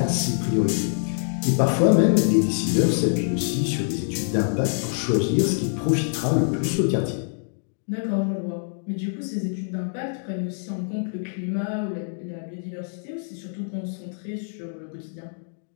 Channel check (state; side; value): silent; right; digital silence